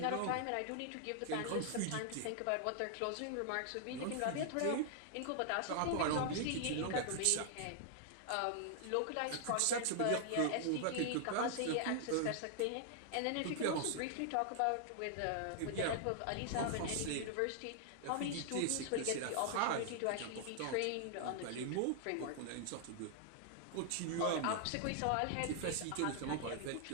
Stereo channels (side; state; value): both; different; correlation -0.01